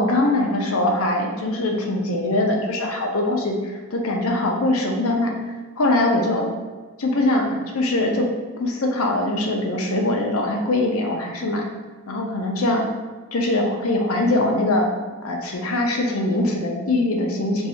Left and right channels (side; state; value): both; normal; correlation 0.23